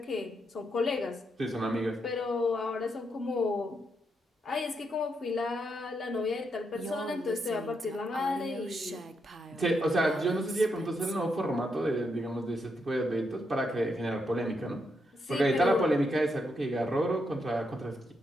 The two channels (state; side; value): normal; both; correlation 0.81